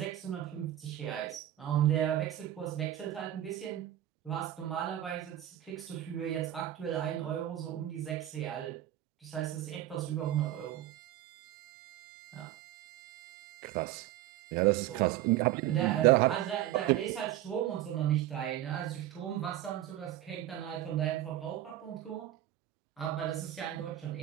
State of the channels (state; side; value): quieter; left; 13.2 dB